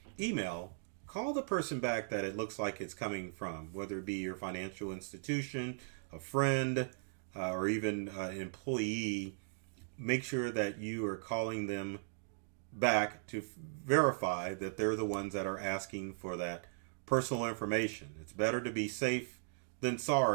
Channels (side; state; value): left; silent; digital silence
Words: email, call the person back that it looks like it's coming from, whether it be your financial institution, a friend, or even an employee. Make sure that you are calling them back to verify that they're the ones that are asking for that personal information. It's better to be safe than